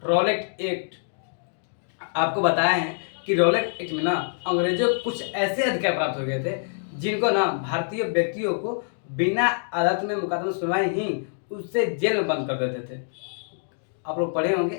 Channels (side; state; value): right; silent; digital silence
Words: रॉलेट एक्ट, आपको बताया है कि रॉलेट एक्ट में ना अंग्रेजों को कुछ ऐसे अधिकार प्राप्त हो गए थे जिनको ना भारतीय व्यक्तियों को बिना अदालत में मुकदमा सुनवाई ही उससे जेल में बंद कर देते थे। आप लोग पढ़े होंगे,